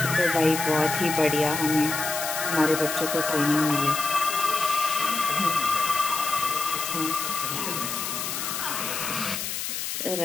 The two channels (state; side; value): noise; left; hiss, 4 dB below the sound